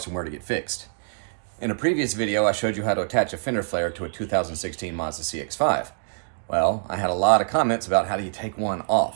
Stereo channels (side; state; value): left; silent; digital silence